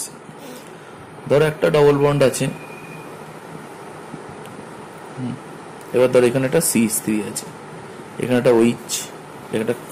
ধরো একটা ডবল বন্ড আছে, এবার ধরো এখানে একটা CH3 আছে, এখানে একটা OH, একটা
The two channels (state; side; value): identical; both; correlation 1.00